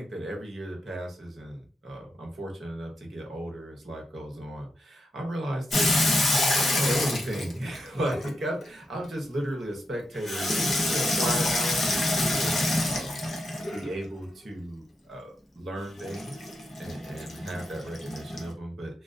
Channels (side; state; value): both; normal; correlation 0.85